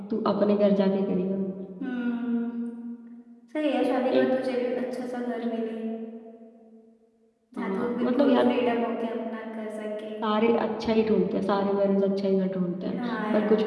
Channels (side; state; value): both; identical; correlation 1.00